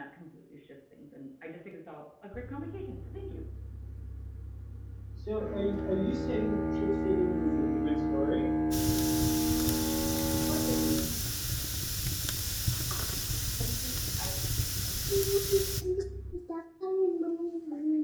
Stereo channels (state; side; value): identical; both; correlation 1.00